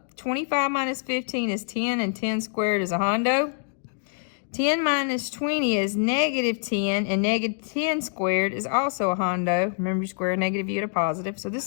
25 minus 15 is 10, and 10 squared is a hundo. 10 minus 20 is negative 10, and negative 10 squared is also a hundo. Remember, you square a negative, you get a positive. So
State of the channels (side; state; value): right; silent; digital silence